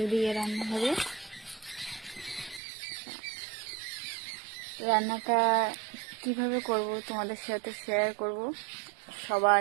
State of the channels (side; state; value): left; drops out; at 2.6 s